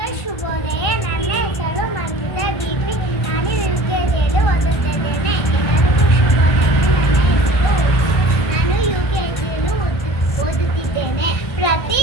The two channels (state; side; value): late; right; 1.3 ms